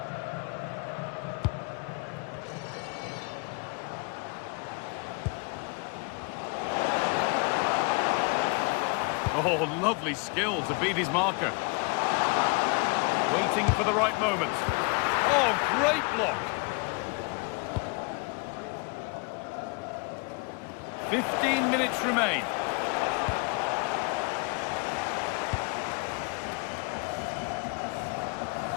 Oh, lovely skill to beat his marker. Waiting for the right moment. Oh, great block. 15 minutes remain.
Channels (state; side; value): quieter; right; 32.6 dB